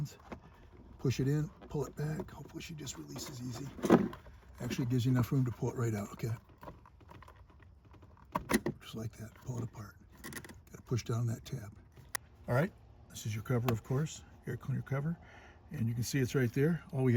Push it in, pull it back. Hopefully she just releases easy. Actually, it gives you enough room to pull it right out, okay? Just like that, pull it apart. Gotta push down that tab. All right, this is your cover, of course, air cleaner cover. And you can see it's right there. All we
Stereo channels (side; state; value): both; identical; correlation 1.00